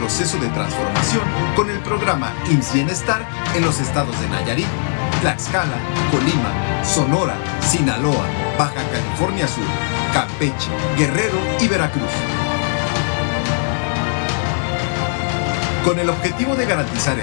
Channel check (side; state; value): right; silent; 57 dB below the other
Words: de transformación con el programa IMSS Bienestar en los estados de Nayarit, Tlaxcala, Colima, Sonora, Sinaloa, Baja California Sur, Campeche, Guerrero y Veracruz. Con el objetivo de garantizar